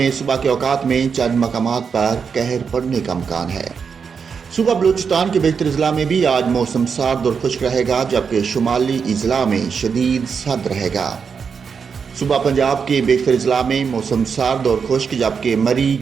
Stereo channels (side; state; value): left; quieter; 6.1 dB